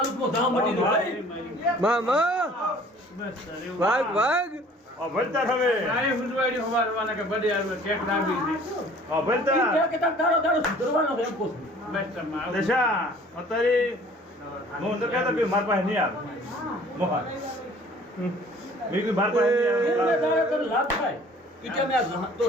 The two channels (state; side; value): normal; both; correlation 0.52